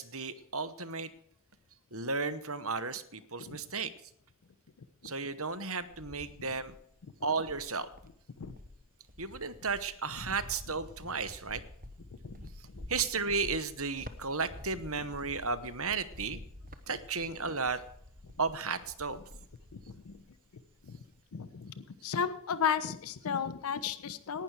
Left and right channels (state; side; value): normal; both; correlation -0.17